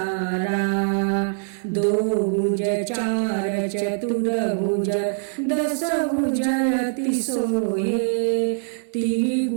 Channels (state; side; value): silent; left; digital silence